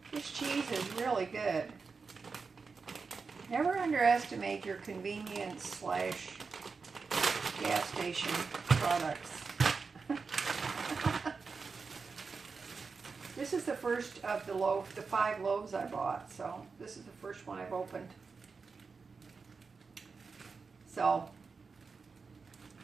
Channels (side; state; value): left; quieter; 4.8 dB